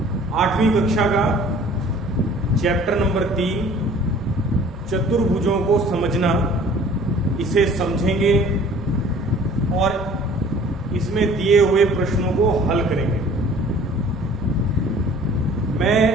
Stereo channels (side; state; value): both; normal; correlation 0.50